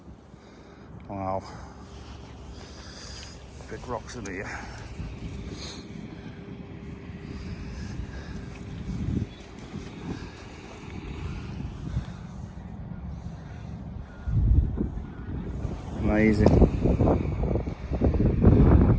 Wow. Big rocks in here. Amazing.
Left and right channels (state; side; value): identical; both; correlation 1.00